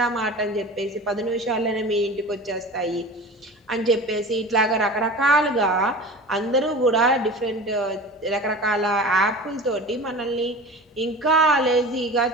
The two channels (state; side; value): normal; both; correlation 0.35